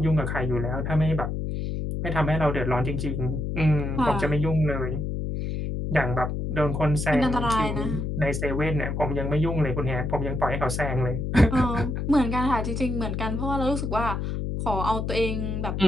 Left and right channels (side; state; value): left; noise; hum, 2 dB below the sound